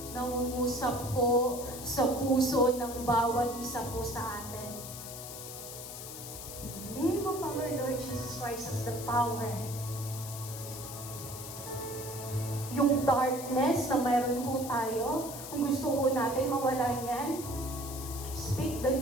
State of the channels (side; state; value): left; noise; hiss, 10 dB below the sound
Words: Nangungusap po sa puso ng bawat isa po sa atin. The name of our Lord Jesus Christ has the power. Yung darkness na mayroon po tayo, kung gusto po natin mawala yan, speak the